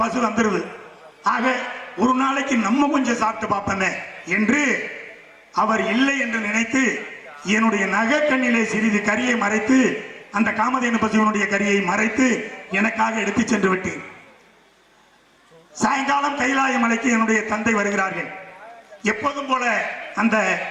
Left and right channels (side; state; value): both; identical; correlation 1.00